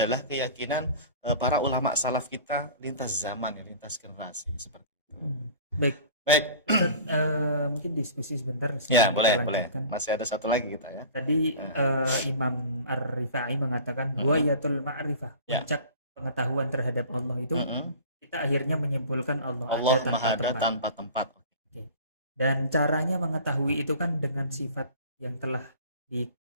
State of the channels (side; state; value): both; inverted; correlation -0.41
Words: keyakinan para ulama salaf kita lintas zaman, ya, lintas generasi seperti itu. Baik. Ustaz, mungkin diskusi sebentar. Ya, boleh. Masih ada satu lagi kita ya. Tadi Imam Ar-Rifa'i mengatakan wayatul ma'rifah, puncak pengetahuan terhadap Allah itu kita akhirnya menyimpulkan Allah ada tanpa tempat. Okay. Dan caranya mengetahui itu kan dengan sifat yang telah